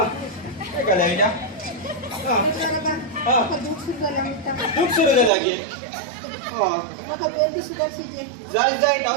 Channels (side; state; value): left; drops out; at 5.3 s